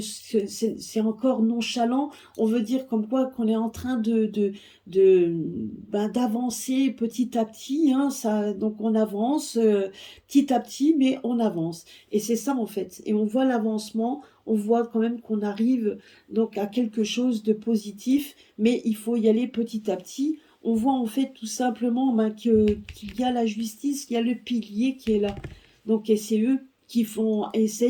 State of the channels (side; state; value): both; identical; correlation 1.00